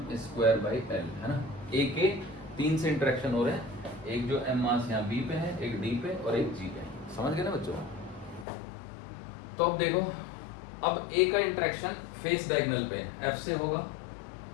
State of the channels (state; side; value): drops out; right; at 8.5 s